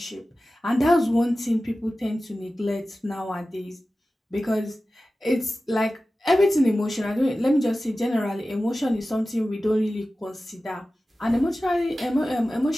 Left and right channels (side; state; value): both; normal; correlation 0.95